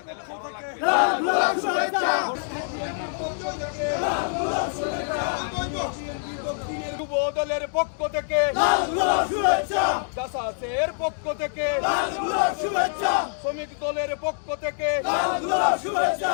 পক্ষ থেকে লাল গোলাপ শুভেচ্ছা, যুব দলের পক্ষ থেকে লাল গোলাপ শুভেচ্ছা, জাসাসের পক্ষ থেকে লাল গোলাপ শুভেচ্ছা, শ্রমিক দলের পক্ষ থেকে লাল গোলাপ শুভেচ্ছা।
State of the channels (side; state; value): right; silent; digital silence